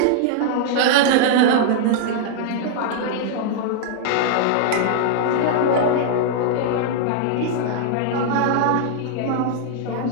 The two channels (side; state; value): both; different; correlation -0.01